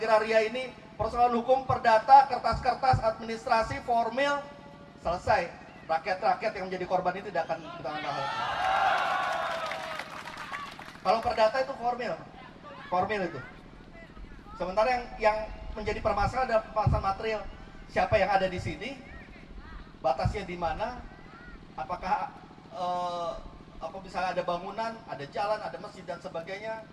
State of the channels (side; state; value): both; identical; correlation 1.00